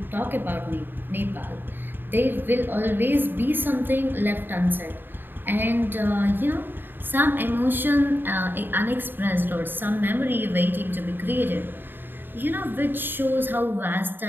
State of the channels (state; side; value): late; left; 0.095 ms